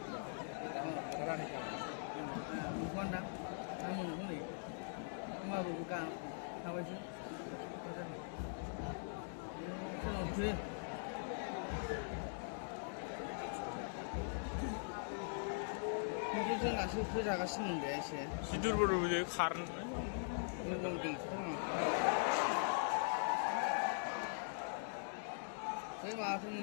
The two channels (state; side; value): silent; right; digital silence